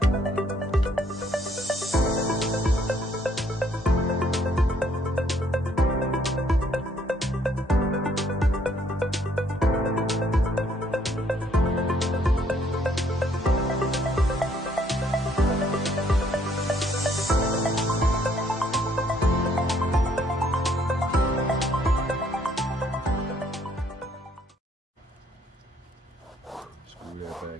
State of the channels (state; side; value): normal; both; correlation 0.66